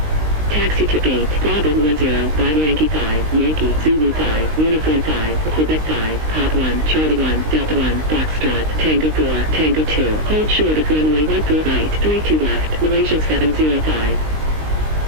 Taxi to gate, Bravo 10, via Yankee 5, Yankee, Zulu 5, Uniform 5, Quebec 5, Pop 1, Charlie 1, Delta 1, Foxtrot, Tango 4, Tango 2, hold short of runway 14 right, 32 left, Malaysian 705.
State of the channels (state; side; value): late; left; 19 ms